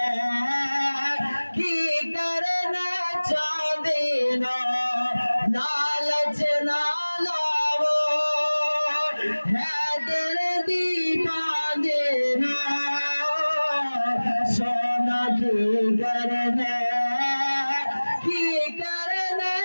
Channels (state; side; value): inverted; both; correlation -1.00